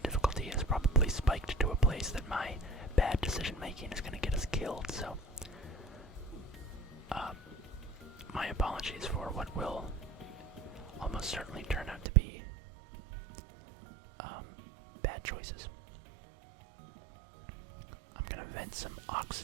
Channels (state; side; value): drops out; left; at 12.1 s